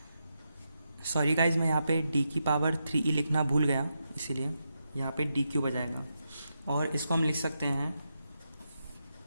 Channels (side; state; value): both; inverted; correlation -0.85